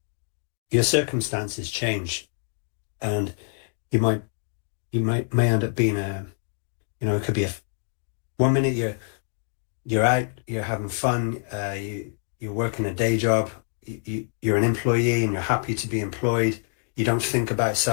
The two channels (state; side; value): silent; right; digital silence